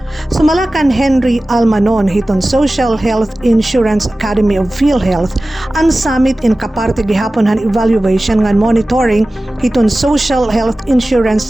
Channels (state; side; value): normal; both; correlation 0.96